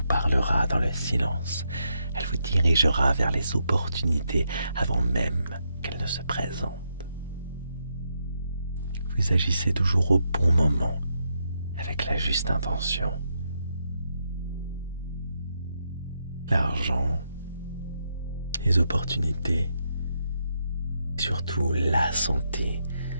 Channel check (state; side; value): inverted; both; correlation -0.80